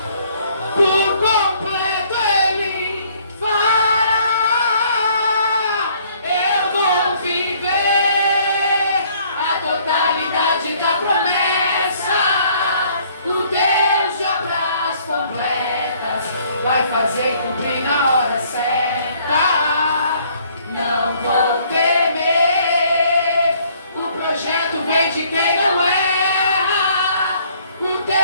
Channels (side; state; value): both; inverted; correlation -0.61